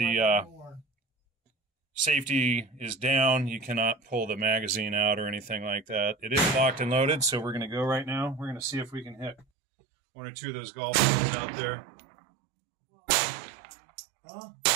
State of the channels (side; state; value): left; drops out; at 9.5 s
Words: safety is down, you cannot pull the magazine out or anything like that. It is locked and loaded, so we're going to go right now. We're going to see if we can hit 1 or 2 of those golf balls out there. Huh?